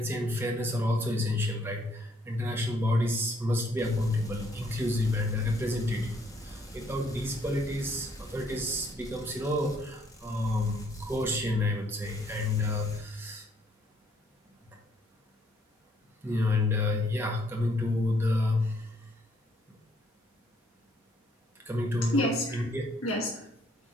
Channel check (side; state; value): both; normal; correlation 0.67